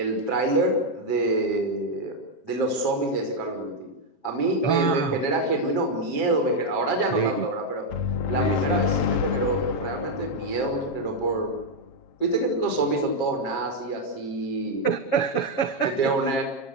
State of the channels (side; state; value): right; late; 7.5 ms